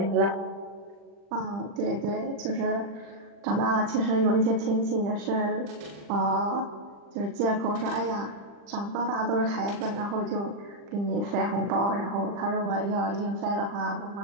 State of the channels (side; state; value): left; late; 40 ms